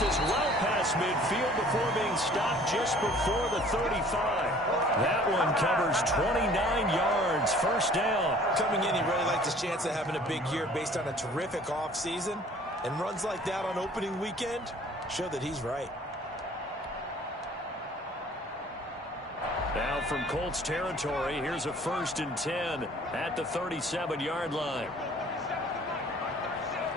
well past midfield before being stopped just before the 35. That one covers 29 yards, first down. Coming in, he really liked his chance of having a big year based on a terrific offseason. And runs like that on opening weekend show that he's right. Now from Colts territory, here's a 1st and 10 at the 37-yard line.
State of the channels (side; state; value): both; normal; correlation 0.52